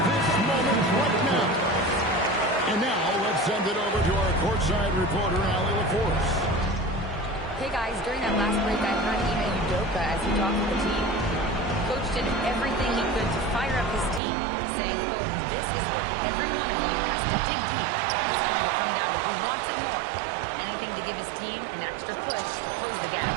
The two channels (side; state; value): left; drops out; at 14.2 s